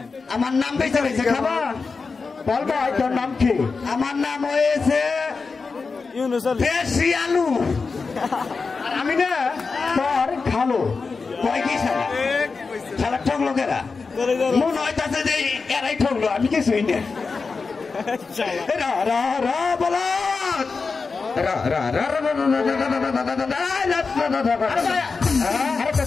আমার নাম বেঁচে রয়েছে খাবা বল ভাই তোর নাম কি আমার নাম হয়েছে দেশি আলু আর আমি না তোর খালো কয় কি সারা ঠকলো কেরা মন হইতাছে যে এরাই ঠকলো আমি কিছুই না বলো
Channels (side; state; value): right; quieter; 4.6 dB